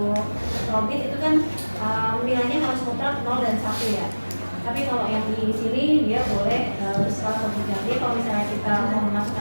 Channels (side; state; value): both; inverted; correlation -1.00